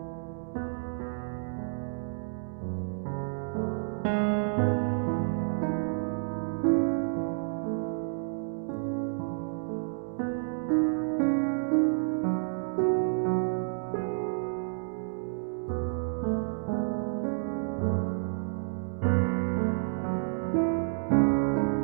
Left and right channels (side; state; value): left; silent; digital silence